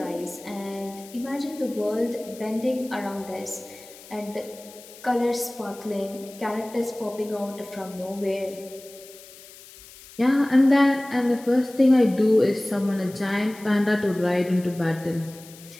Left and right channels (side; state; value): left; noise; hiss, 20 dB below the sound